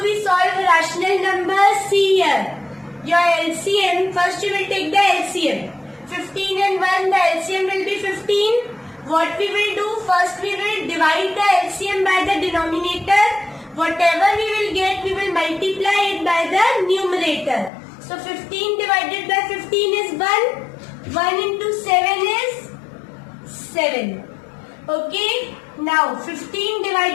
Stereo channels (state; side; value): drops out; right; at 17.7 s